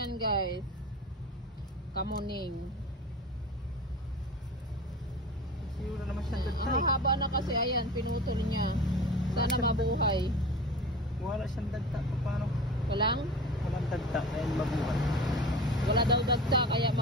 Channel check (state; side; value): normal; both; correlation 0.35